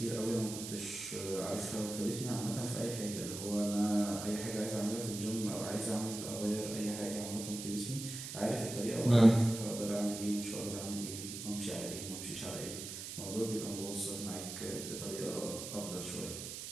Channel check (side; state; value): right; noise; hiss, 8 dB below the sound